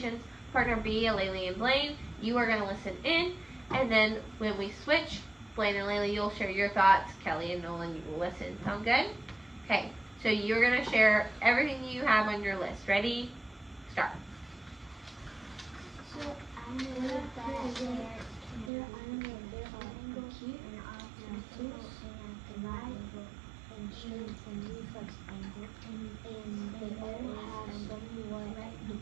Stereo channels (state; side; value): drops out; left; at 18.7 s